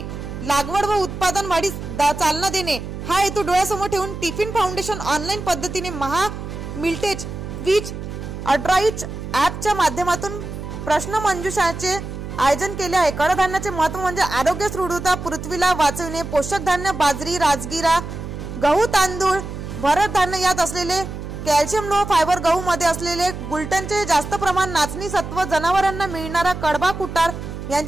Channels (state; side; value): noise; right; hum, 8 dB below the sound